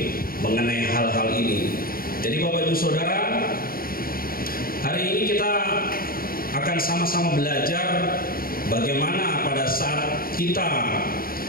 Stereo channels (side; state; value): right; late; 0.43 ms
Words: mengenai hal-hal ini. Jadi Bapak Ibu Saudara, hari ini kita akan sama-sama belajar bagaimana pada saat kita